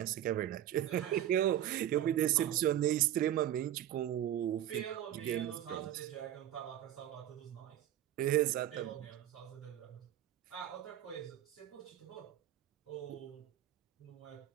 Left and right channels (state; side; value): quieter; left; 11.8 dB